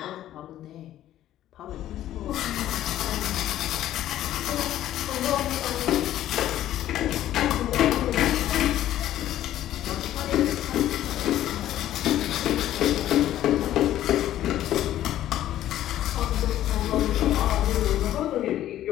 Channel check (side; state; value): right; quieter; 12.8 dB